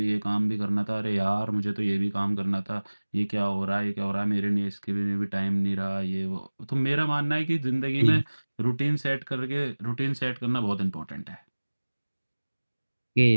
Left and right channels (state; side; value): inverted; both; correlation -1.00